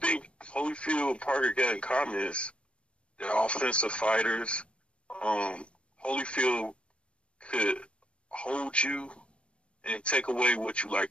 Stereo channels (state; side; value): late; right; 0.059 ms